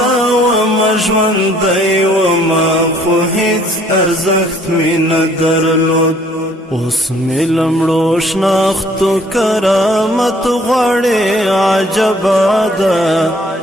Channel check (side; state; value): both; normal; correlation 0.60